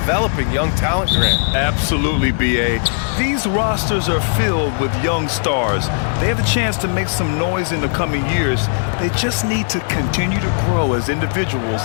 young talent, Grant. Absolutely, B.A. These rosters are filled with young stars. They have a chance to make some noise in the coming years. They just need to continue to grow as individuals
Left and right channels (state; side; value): silent; right; digital silence